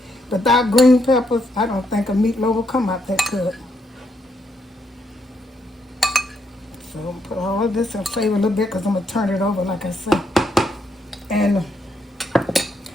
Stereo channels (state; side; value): normal; both; correlation 0.77